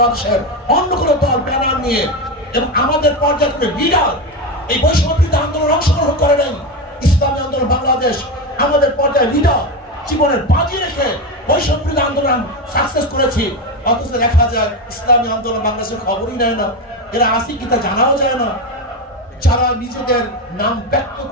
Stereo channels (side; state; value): both; normal; correlation 0.16